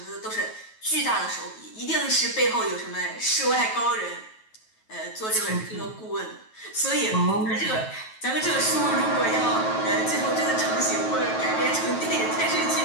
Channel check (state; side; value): late; right; 9.2 ms